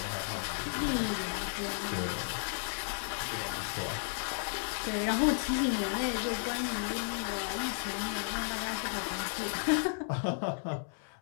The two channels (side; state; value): right; silent; 55 dB below the other